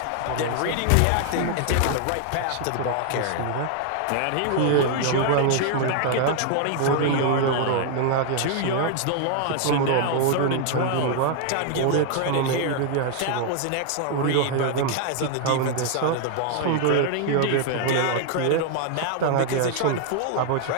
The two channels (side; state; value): both; different; correlation 0.00